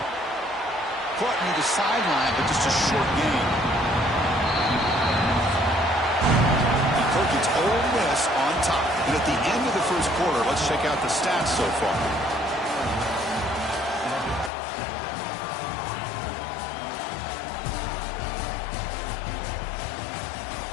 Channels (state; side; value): drops out; right; at 14.5 s